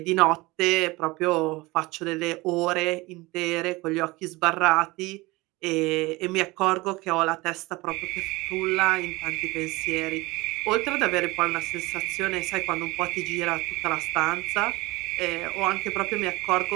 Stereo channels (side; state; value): left; quieter; 22.1 dB